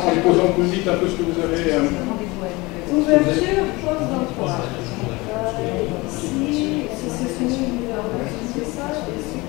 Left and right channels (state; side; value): quieter; right; 23.3 dB